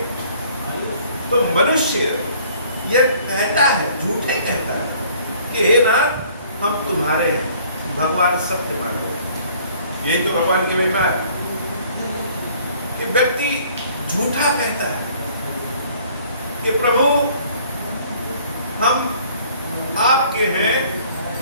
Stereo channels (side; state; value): both; inverted; correlation -0.57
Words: तो मनुष्य यह कहता है, झूठे कहता है कि हे नाथ हम तुम्हारे हैं, भगवान सत्य मान गए। यही तो भगवान की महिमा है कि व्यक्ति झूठा कहता है कि प्रभु हम आपके हैं